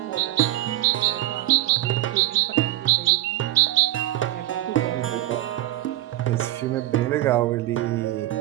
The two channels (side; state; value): left; quieter; 15.4 dB